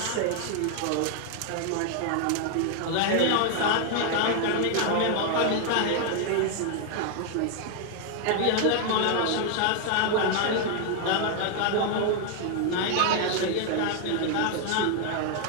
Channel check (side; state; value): both; different; correlation 0.00